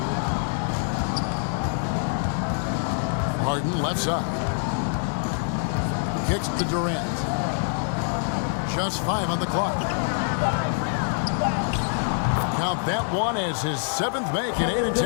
Harden left side. Kicks to Durant. Just 5 on the clock. Count that one as his 7th make in 8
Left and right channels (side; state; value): right; silent; digital silence